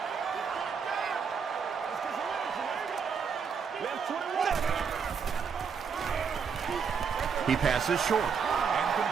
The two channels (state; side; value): quieter; left; 6.3 dB